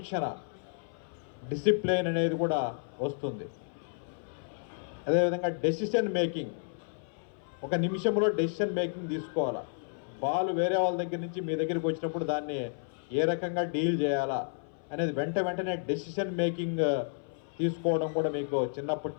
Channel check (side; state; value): right; silent; 57 dB below the other